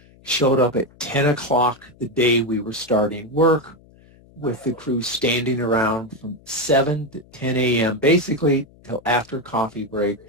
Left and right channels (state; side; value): noise; left; hum, 27 dB below the sound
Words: showed up at 10 o'clock the day we were starting work, with the crew standing around from 7 to 10 a.m., basically till after coffee break